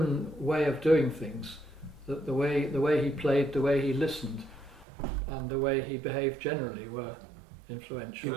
way of doing things, the way he played, the way he listened, and the way he behaved generally were influential. He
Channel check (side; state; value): left; drops out; at 4.9 s